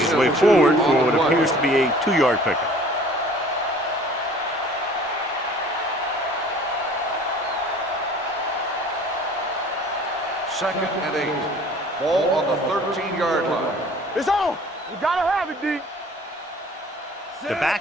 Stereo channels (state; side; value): normal; both; correlation 0.49